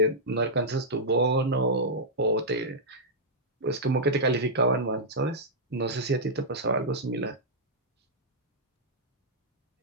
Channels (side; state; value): both; normal; correlation -0.09